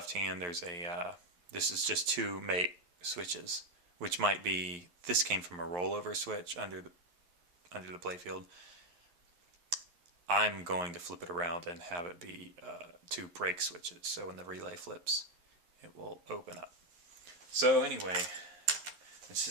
hand there's a this is just 2 make switches, which might be, this came from a rollover switch under the playfield. I'm going to flip it around and have it be 2 break switches, so when the relay flips it will open up. So anyway, I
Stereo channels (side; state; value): left; late; 11 ms